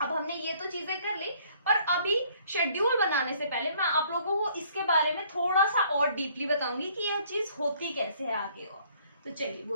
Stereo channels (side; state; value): both; inverted; correlation -0.61